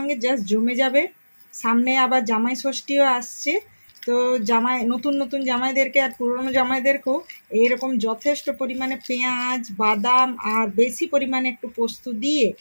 জাস্ট জমে যাবে। সামনে আবার জামাই ষষ্ঠীও আসছে, তো নতুন নতুন জামাইদেরকে আর পুরনো জামাইদেরকেও এইরকম যথেষ্ট পরিমাণে পেঁয়াজ বাদাম আর বেশি পরিমাণে একটু পোস্ত দিয়ে,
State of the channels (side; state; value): both; inverted; correlation -1.00